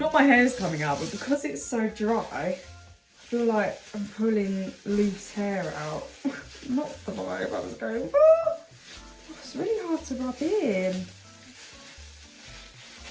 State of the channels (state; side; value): identical; both; correlation 1.00